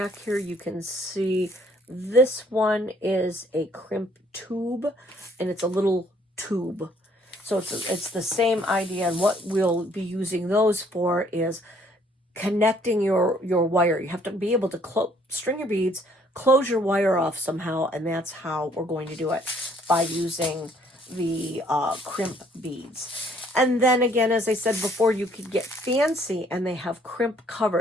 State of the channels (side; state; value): both; normal; correlation 0.63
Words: here, you can see this one is a crimp tube, and it's a little tube. So it's the same idea, and what we'll be using those for is connecting your wire. You have to be able to string your beads, close your wire off somehow, and that's how we're going to do it, by using the crimp beads. And then again, as I said before, you could get fancy, and they have crimp